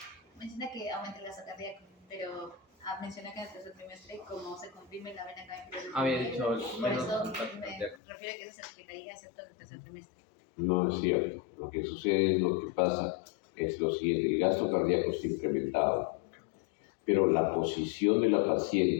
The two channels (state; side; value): drops out; right; at 8.0 s